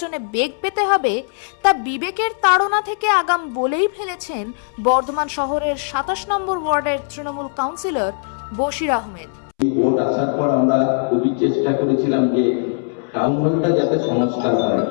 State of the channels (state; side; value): silent; right; 66 dB below the other